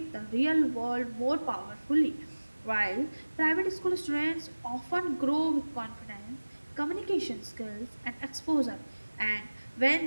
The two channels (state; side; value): inverted; both; correlation -1.00